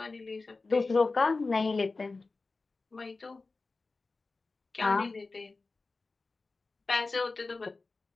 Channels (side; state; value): right; quieter; 3.7 dB